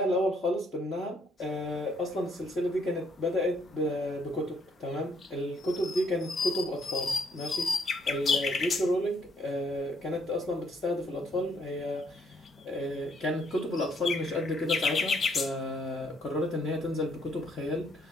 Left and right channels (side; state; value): both; normal; correlation 0.69